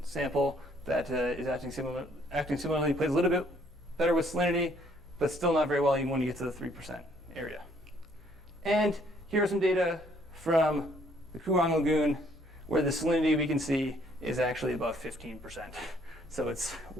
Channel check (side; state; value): both; normal; correlation 0.64